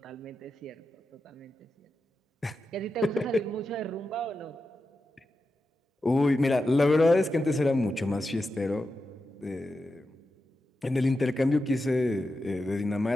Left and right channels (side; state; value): both; normal; correlation 0.90